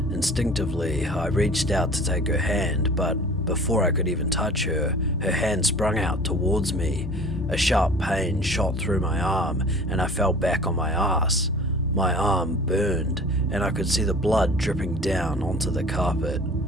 Instinctively, I reached out to take her hand, but before I could even touch her, her hand sprung out towards me. A sharp pain shot through my arm and I fell back on my ass. My arm burned, and I could see the blood dripping down onto the carpet.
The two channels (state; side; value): normal; both; correlation 0.43